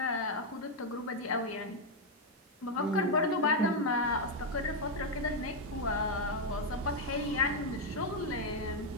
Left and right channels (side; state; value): both; normal; correlation 0.02